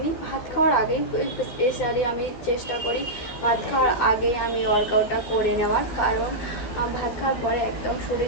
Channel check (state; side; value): late; right; 13 ms